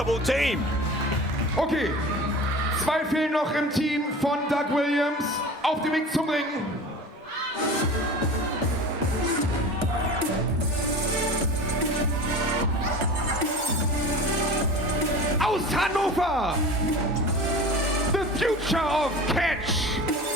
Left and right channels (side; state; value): both; normal; correlation 0.36